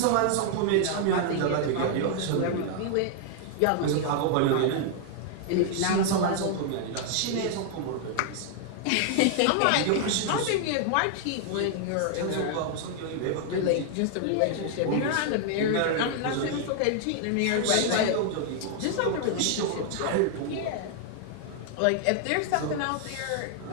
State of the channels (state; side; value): different; both; correlation 0.00